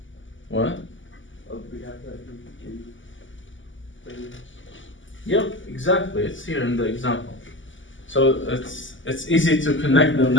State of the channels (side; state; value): right; late; 0.55 ms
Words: What? Yep, exactly. It's here in the example. So it's easy to connect them